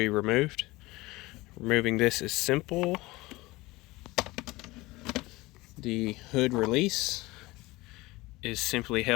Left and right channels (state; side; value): quieter; right; 20.8 dB